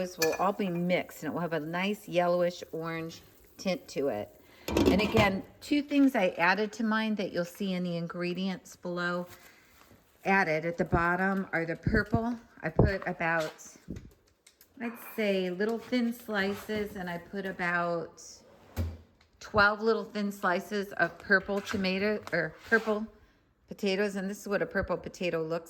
will all be mixed, and it will have a nice yellowish orange tint to it. And again, two things I added to mine that you'll see in the ingredients below added at the bottom are the purple. I put about, I'd say, little thin slices, and I put about 12 little thin slices of purple tomato or purple potatoes, and this is what a purple potato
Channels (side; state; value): both; identical; correlation 1.00